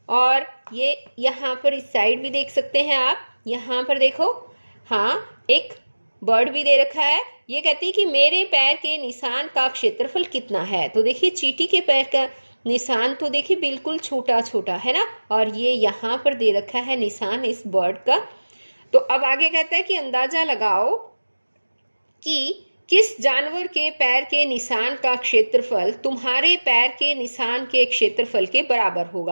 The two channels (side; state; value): both; inverted; correlation -1.00